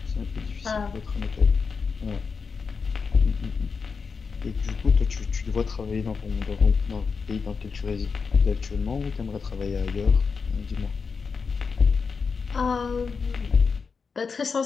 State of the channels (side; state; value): right; quieter; 5.3 dB